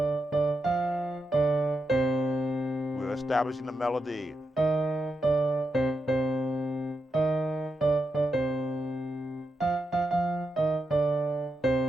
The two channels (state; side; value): normal; both; correlation 0.86